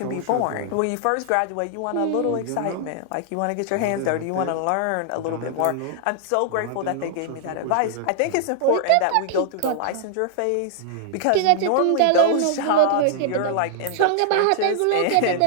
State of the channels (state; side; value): different; both; correlation -0.01